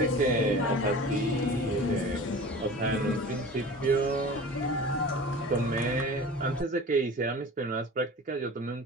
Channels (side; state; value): both; normal; correlation 0.38